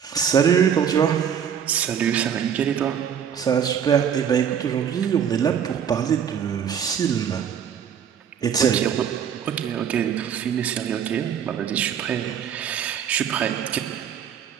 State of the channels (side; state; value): left; quieter; 8.3 dB